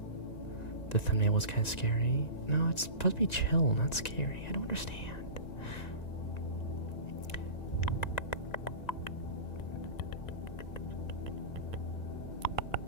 The thumbnail was kind of scary. No, it's supposed to be chill, not scary. I don't understand.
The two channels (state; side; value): late; right; 1.9 ms